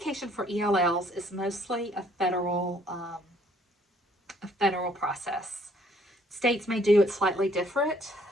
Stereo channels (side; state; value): both; normal; correlation 0.63